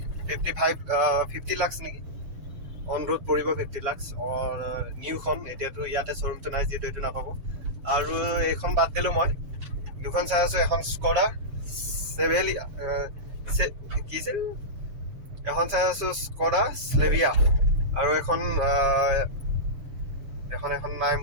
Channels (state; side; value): late; left; 6.4 ms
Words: 50 লাখ নেকি অন ৰোড পৰিব 50 লাখ নিউখন এতিয়াতো ইয়াতে শ্ব'ৰুমটো নাই যিহেতু এইটো নাপাব আৰু এইখন বাদ দিলোঁ মই দুখন চাই আছোঁ এখন স্কডা কি আছিল এখন চাই আছোঁ স্কডা স্লেভিয়া আৰু এখন নাম